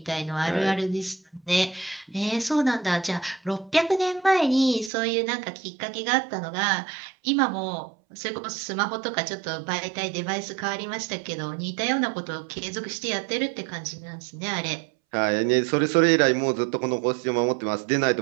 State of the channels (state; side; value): drops out; left; at 4.9 s